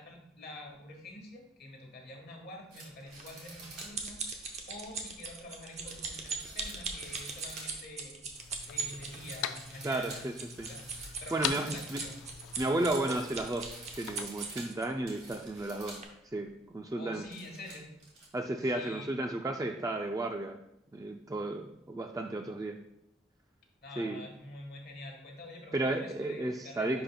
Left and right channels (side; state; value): both; normal; correlation 0.60